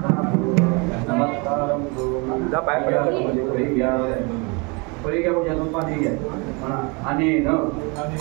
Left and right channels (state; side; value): quieter; left; 30.1 dB